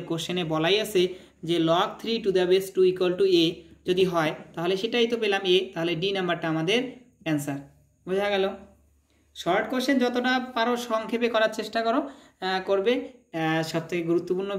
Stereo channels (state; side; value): identical; both; correlation 1.00